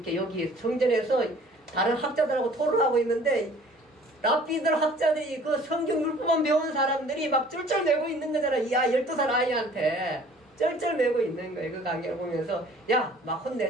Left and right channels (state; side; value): normal; both; correlation 0.52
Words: 여기 성전에서 다른 학자들하고 토론하고 있는데 랍비들 학자들이 그 성경 율법만 배운 사람들이 막 쩔쩔매고 있는 거잖아. 12살 아이한테 쩔쩔매고 있는 거예요. 그 강의를 보면서 야 막